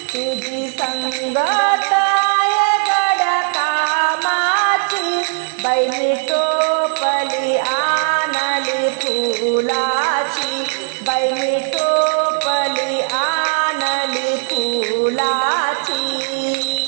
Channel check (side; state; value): left; silent; digital silence